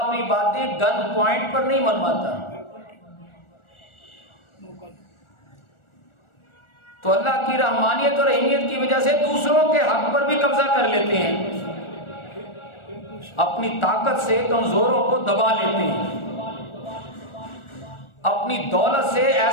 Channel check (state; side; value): late; right; 1.4 ms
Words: باتیں گن پوائنٹ پر نہیں منواتا، تو اللہ کی رحمانیت اور رحیمیت کی وجہ سے دوسروں کے حق پر بھی قبضہ کر لیتے ہیں، اپنی طاقت سے کمزوروں کو دبا لیتے ہیں، اپنی دولت سے